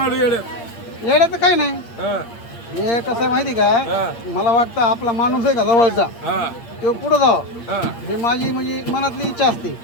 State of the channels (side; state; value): right; late; 8.6 ms